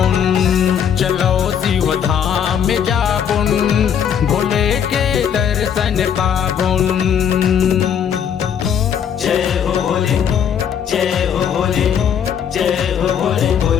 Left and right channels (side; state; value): right; quieter; 8.2 dB